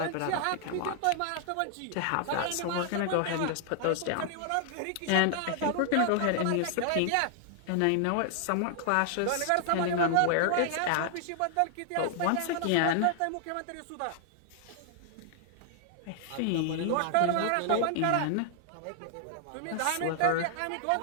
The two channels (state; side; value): different; both; correlation 0.00